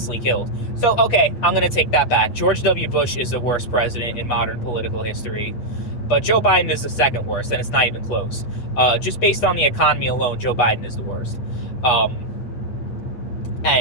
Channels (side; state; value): right; late; 8.3 ms